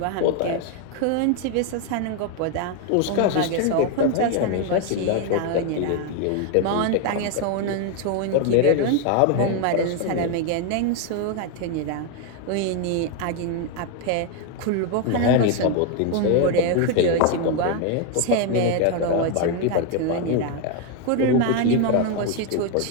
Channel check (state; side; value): different; both; correlation 0.01